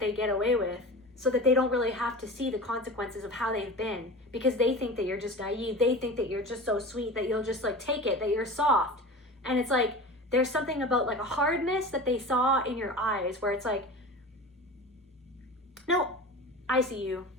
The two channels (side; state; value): both; normal; correlation 0.33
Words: get away with, so that they don't really have to see the consequences of how they've been, because they think that you're just naive. They think that you're just so sweet that you'll just like take it, that you're soft. And it's like, there's something about like a hardness that they saw in your eyes where it's like, no, I see you.